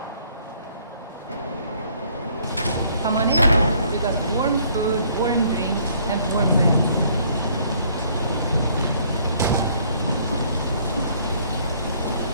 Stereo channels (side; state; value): both; inverted; correlation -0.62